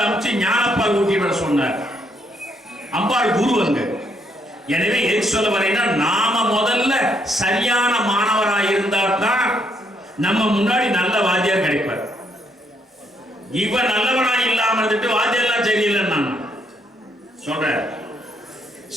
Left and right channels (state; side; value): normal; both; correlation 0.73